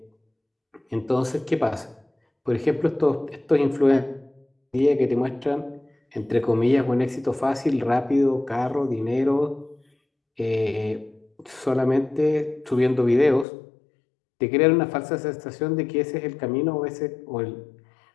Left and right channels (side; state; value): right; drops out; at 13.5 s